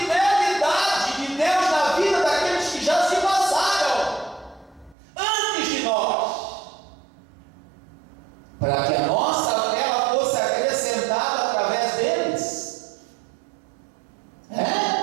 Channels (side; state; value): left; drops out; at 5.0 s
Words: de Deus na vida daqueles que já se passaram antes de nós, para que a nossa fé fosse acrescentada através deles.